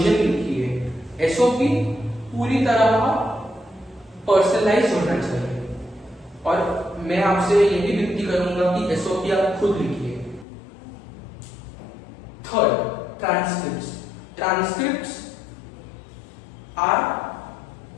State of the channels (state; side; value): drops out; right; at 10.5 s